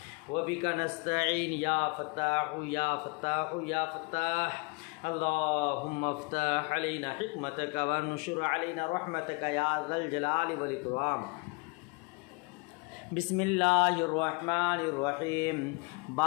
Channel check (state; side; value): quieter; right; 29.8 dB